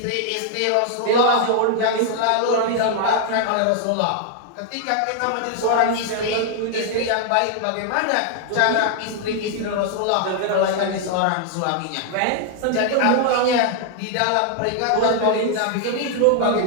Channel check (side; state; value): both; different; correlation 0.00